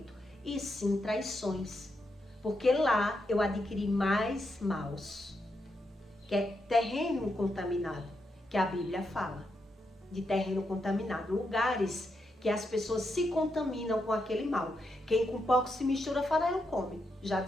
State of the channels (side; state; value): both; normal; correlation 0.83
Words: e sim traições. Porque lá eu adquiri mais maus, que é terreno contaminado, que a Bíblia fala de terreno contaminado, lugares que as pessoas se contaminam com aquele mal. Quem com pouco se mistura, farelo come, já